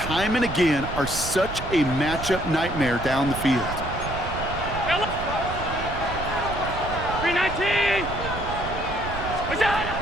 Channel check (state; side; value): noise; right; rumble, 8 dB below the sound